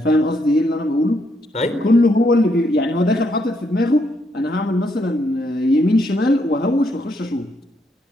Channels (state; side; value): normal; both; correlation 0.75